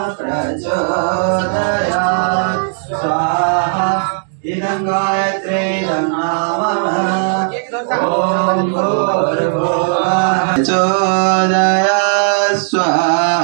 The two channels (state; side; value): silent; left; digital silence